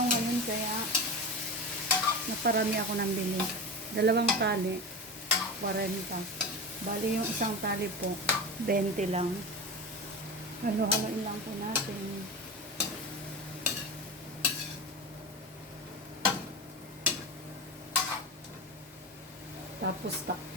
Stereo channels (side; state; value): both; normal; correlation 0.25